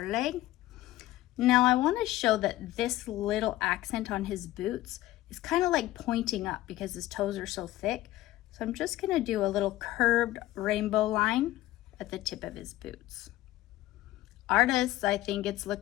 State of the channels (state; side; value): quieter; right; 15.9 dB